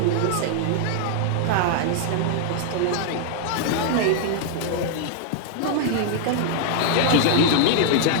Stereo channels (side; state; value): both; different; correlation -0.01